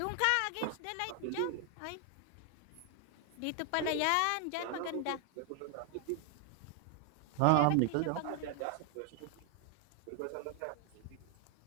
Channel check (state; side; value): different; both; correlation 0.00